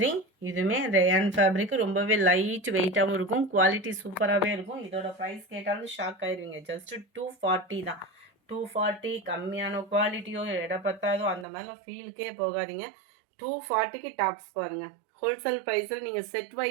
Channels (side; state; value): left; drops out; at 11.5 s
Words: இதுவுமே ரேயான் ஃபேப்ரிக்கு ரொம்பவே லைட் வெயிட்டாகவும் இருக்கும். குவாலிட்டி சூப்பராகவே இருக்கும். இதோட ப்ரைஸ் கேட்டாலும் ஷாக் ஆயிடுவீங்க. ஜஸ்ட் 240 தான். 240 கம்மியான குவாலிட்டியோ எடை பத்தாதோ அந்த மாதிரிலாம் ஃபீலுக்கே போகாதீங்க. 240க்கு டாப்ஸ் பாருங்கள். ஹோல்சேல் ப்ரைஸில் நீங்கள் செட்